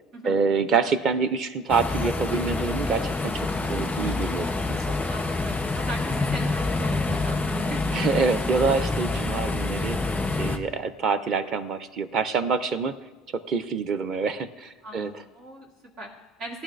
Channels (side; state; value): both; normal; correlation 0.59